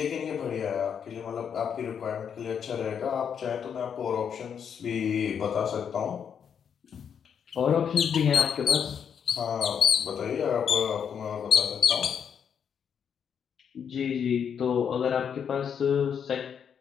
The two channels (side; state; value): right; quieter; 7.6 dB